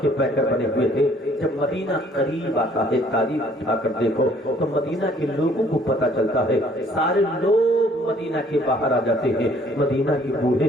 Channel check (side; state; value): both; normal; correlation 0.60